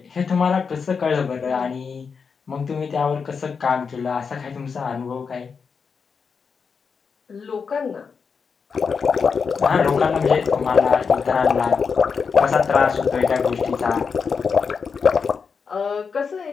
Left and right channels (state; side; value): quieter; right; 5.7 dB